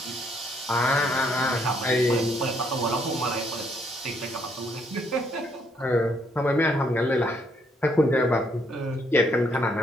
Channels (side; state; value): both; normal; correlation 0.70